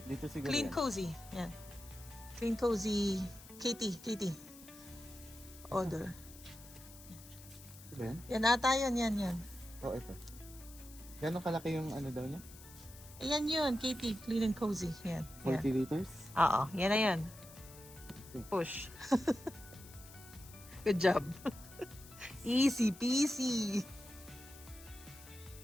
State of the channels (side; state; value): left; noise; hiss, 19 dB below the sound